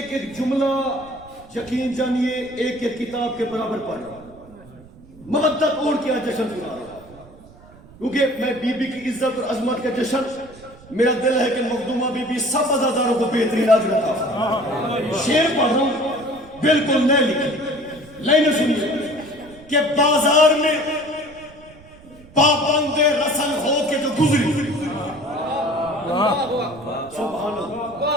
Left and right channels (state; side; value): noise; right; rumble, 23 dB below the sound